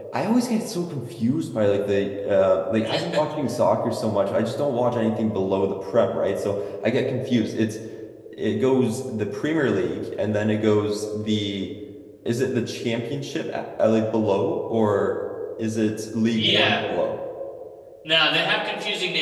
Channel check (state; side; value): identical; both; correlation 1.00